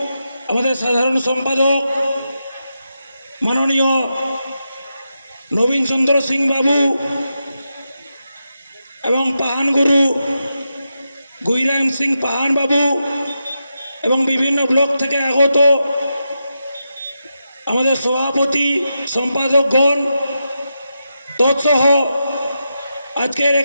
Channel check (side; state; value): both; inverted; correlation -0.87